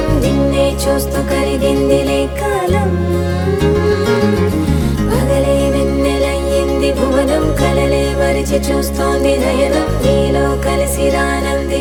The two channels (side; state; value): both; identical; correlation 1.00